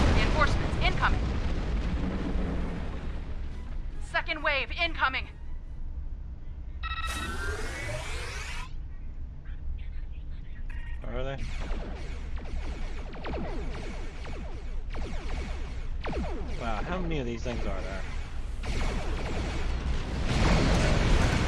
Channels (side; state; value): both; identical; correlation 1.00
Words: Reinforcements incoming. Second wave incoming. Where are they? Wow, how many of these things are there?